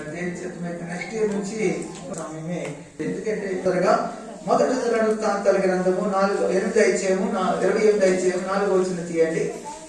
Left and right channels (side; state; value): both; identical; correlation 1.00